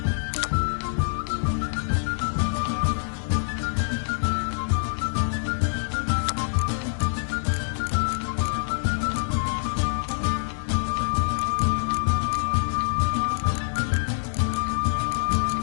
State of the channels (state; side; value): silent; right; 61 dB below the other